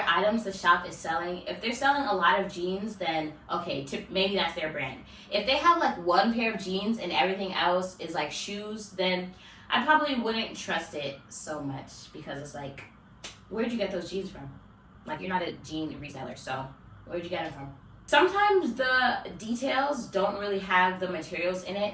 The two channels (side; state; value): both; identical; correlation 1.00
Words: items the shop is selling. If they're selling a lot of jeans, then okay, maybe that's their brand. If they have like 1 pair of jeans and everything else is like shoes, then I probably wouldn't trust it so much because it's like, where'd you get those jeans from? Like, you're not a jean reseller, so where'd you get them from? Sometimes the details don't really have the materials in